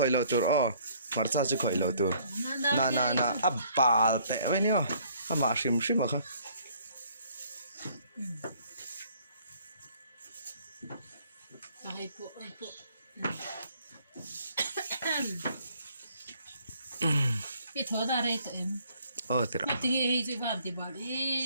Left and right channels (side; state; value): both; inverted; correlation -0.61